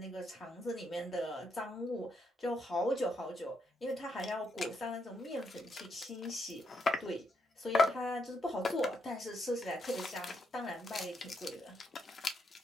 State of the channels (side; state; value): both; normal; correlation 0.79